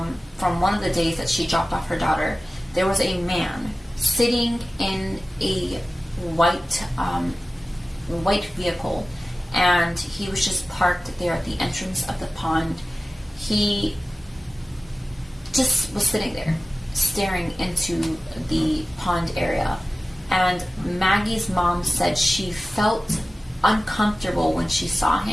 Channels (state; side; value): normal; both; correlation 0.96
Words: from one of the days that she dropped off her daughter, there was a man sitting in a white vehicle, and he was just parked there at the entrance of the pond. He just was sitting there staring into the pond area, and Maggie's mom said she felt uncomfortable when she saw